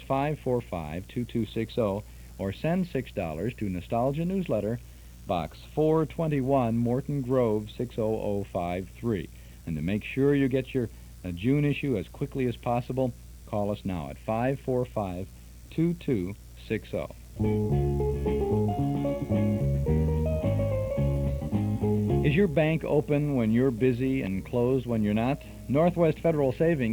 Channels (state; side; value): identical; both; correlation 1.00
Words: 545-2260. Or send $6 to Nostalgia Newsletter, Box 421, Morton Grove, 60053. And to make sure you get your June issue as quickly as possible, call us now at 545-2260. Is your bank open when you're busy and closed when you're not? Northwest Federal